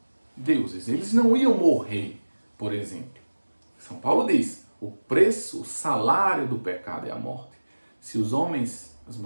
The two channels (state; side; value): inverted; both; correlation -1.00